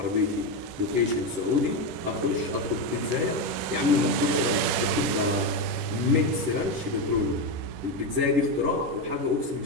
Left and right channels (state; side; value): late; left; 10 ms